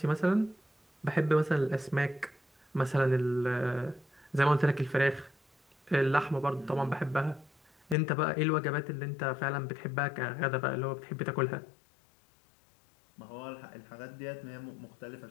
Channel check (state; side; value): drops out; right; at 8.0 s